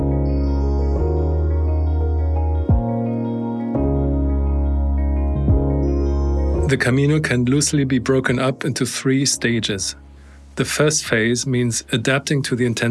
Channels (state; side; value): identical; both; correlation 1.00